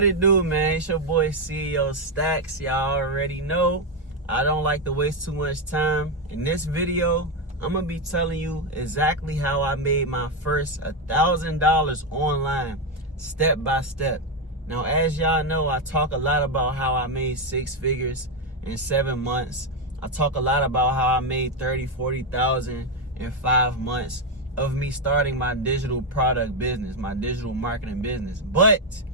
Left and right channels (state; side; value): normal; both; correlation 0.06